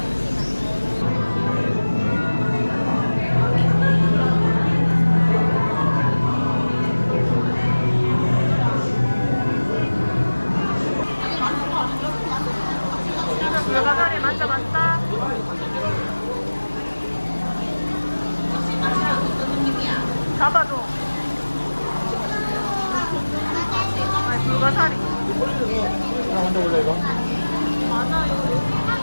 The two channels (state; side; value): inverted; both; correlation -1.00